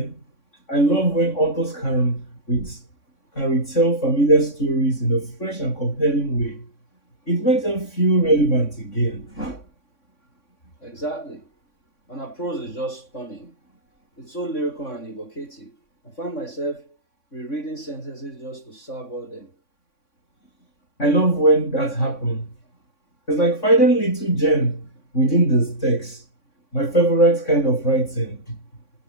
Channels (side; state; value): right; late; 3.6 ms